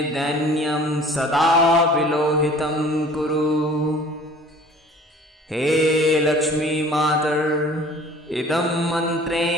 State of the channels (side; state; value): both; normal; correlation 0.48